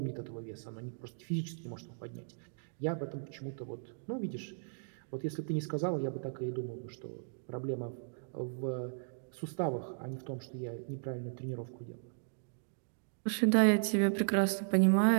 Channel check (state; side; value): silent; left; digital silence